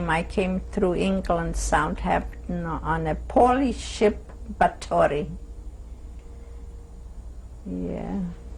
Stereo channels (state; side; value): identical; both; correlation 1.00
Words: I came through England, Southampton, on a Polish ship, Batory. Yeah.